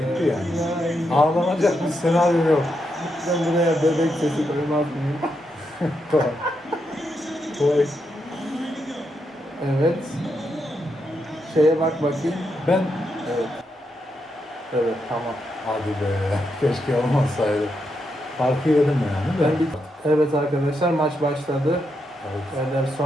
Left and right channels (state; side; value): normal; both; correlation 0.82